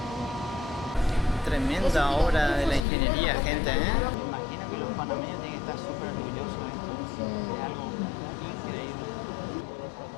Tremenda obra de la ingeniería, gente, ¿eh? Me imagino que los panameños tienen que estar súper orgullosos de esto. Es algo increíble.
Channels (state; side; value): drops out; right; at 2.9 s